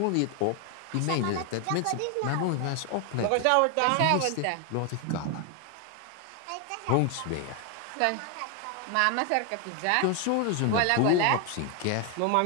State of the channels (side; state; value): both; different; correlation 0.01